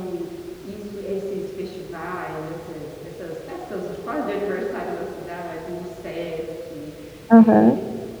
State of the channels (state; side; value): identical; both; correlation 1.00